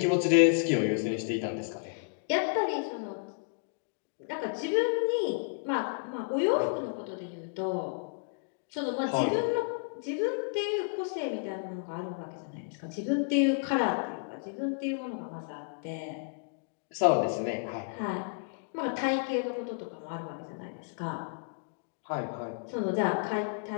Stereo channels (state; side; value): silent; right; digital silence